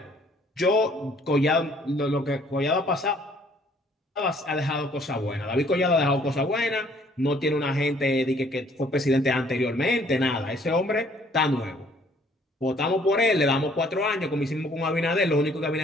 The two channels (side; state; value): both; normal; correlation 0.61